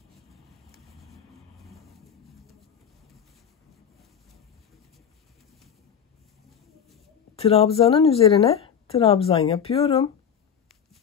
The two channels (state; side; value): quieter; right; 7.9 dB